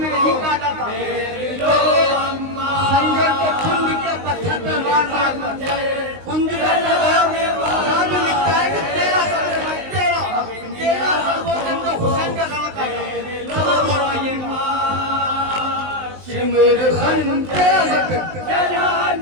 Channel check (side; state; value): left; late; 19 ms